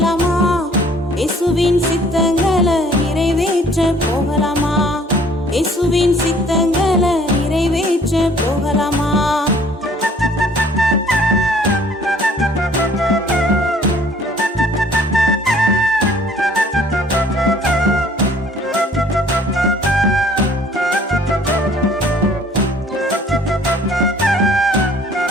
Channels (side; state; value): both; normal; correlation 0.56